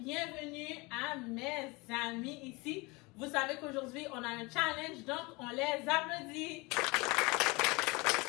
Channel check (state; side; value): quieter; right; 25.4 dB